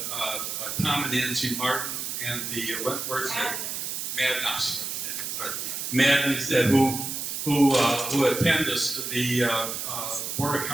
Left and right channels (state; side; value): noise; right; hiss, 4 dB below the sound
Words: Tom and Nancy Martin and the Madden said who attend the Board of